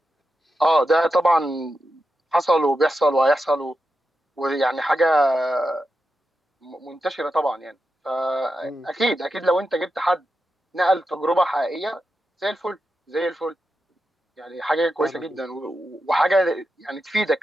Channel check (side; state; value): both; normal; correlation 0.89